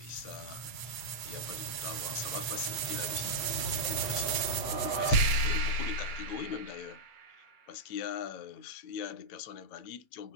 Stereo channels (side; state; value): right; late; 8.6 ms